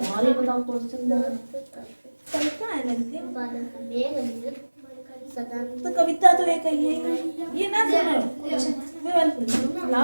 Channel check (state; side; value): inverted; both; correlation -1.00